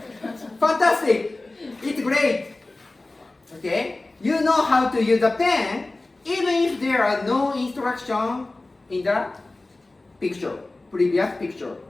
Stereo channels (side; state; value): right; quieter; 3.0 dB